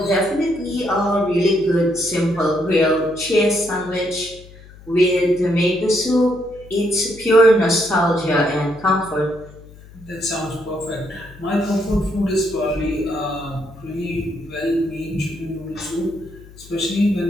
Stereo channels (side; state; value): left; noise; hum, 21 dB below the sound